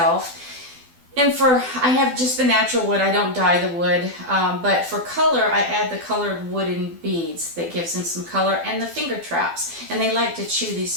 And I have just the natural wood, I don't dye the wood, but for color I add the colored wooden beads that gives them some color, and the finger traps. And they like to chew these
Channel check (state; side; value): late; left; 12 ms